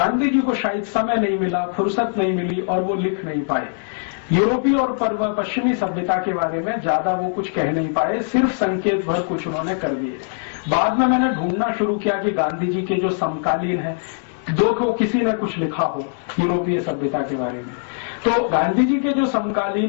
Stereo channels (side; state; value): right; silent; digital silence